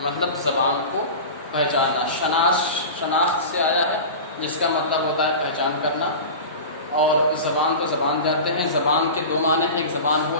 مطلب زبان کو پہچاننا۔ شناخت سے آیا ہے، جس کا مطلب ہوتا ہے پہچان کرنا، اور زبان کو زبان جانتے ہیں۔ زبان کے دو معنی ہیں، ایک زبان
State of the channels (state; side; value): inverted; both; correlation -0.31